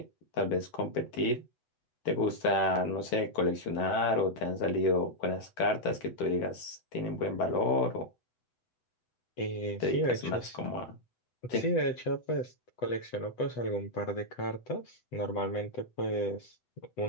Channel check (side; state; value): right; late; 8.0 ms